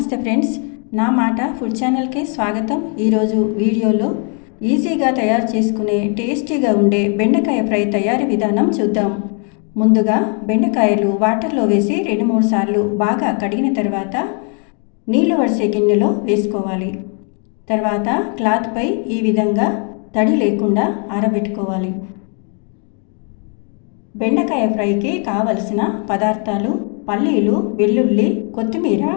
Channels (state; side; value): quieter; right; 39.7 dB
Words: ఫ్రెండ్స్, నా మాట ఫుడ్ ఛానల్కి స్వాగతం. ఈరోజు వీడియోలో ఈజీగా తయారు చేసుకునే టేస్టీగా ఉండే బెండకాయ ఫ్రై తయారీ విధానం చూద్దాం. ముందుగా బెండకాయలు వాటర్లో వేసి 2-3 సార్లు బాగా కడిగిన తర్వాత నీళ్లు వడిసే గిన్నెలో వేసుకోవాలి. తర్వాత క్లాత్పై ఈ విధంగా తడి లేకుండా ఆరబెట్టుకోవాలి. బెండకాయ ఫ్రైకి కావలసిన పదార్థాలు: పల్లీలు, వెల్లుల్లి, కొత్తిమీర,